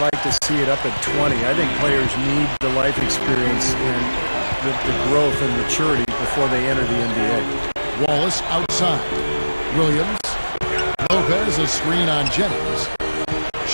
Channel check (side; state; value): both; inverted; correlation -1.00